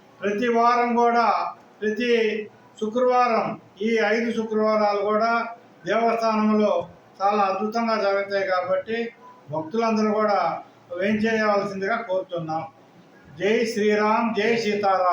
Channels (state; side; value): identical; both; correlation 1.00